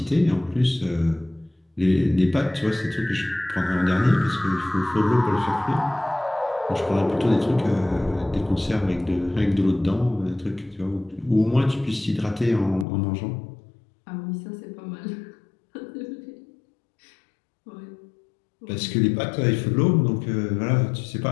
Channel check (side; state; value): right; drops out; at 12.9 s